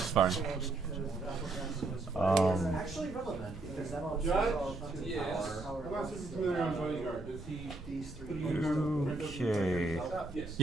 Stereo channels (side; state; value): left; quieter; 3.0 dB